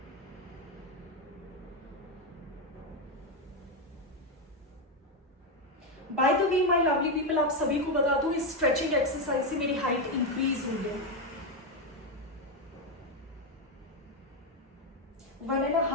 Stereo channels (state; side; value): normal; both; correlation 0.07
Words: By the way my lovely people, आप सभी को बता दूं इस स्ट्रेचिंग एक्सरसाइज से मेरी हाइट इंक्रीज हुई है।